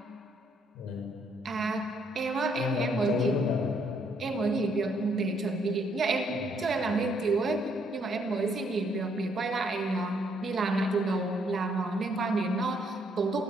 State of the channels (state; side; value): normal; both; correlation 0.70